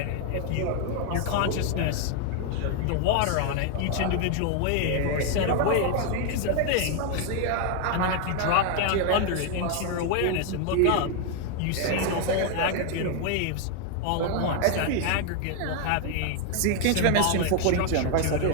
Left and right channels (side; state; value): both; different; correlation 0.00